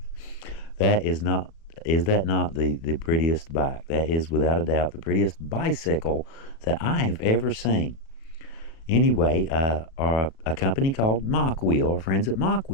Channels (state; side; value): late; right; 37 ms